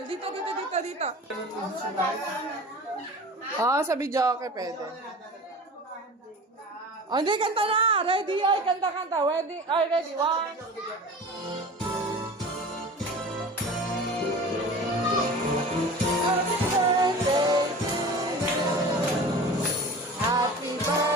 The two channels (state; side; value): normal; both; correlation 0.37